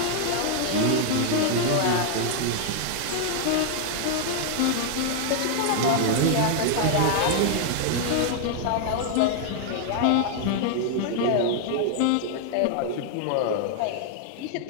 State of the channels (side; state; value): both; different; correlation 0.00